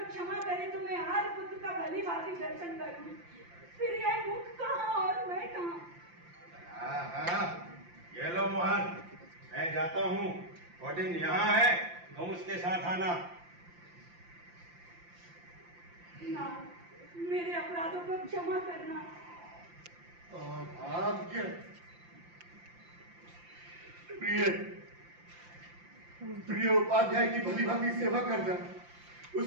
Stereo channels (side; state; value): left; late; 5.8 ms